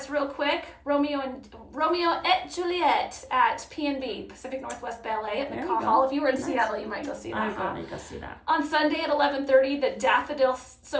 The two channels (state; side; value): identical; both; correlation 1.00